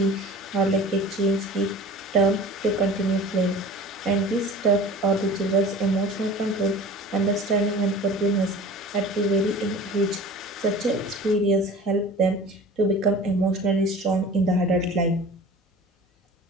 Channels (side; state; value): both; normal; correlation 0.40